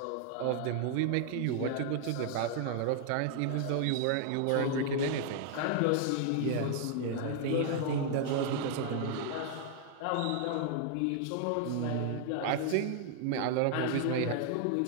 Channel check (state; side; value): different; both; correlation 0.00